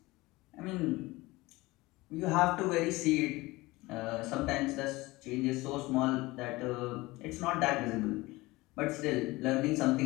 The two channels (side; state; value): right; quieter; 20.9 dB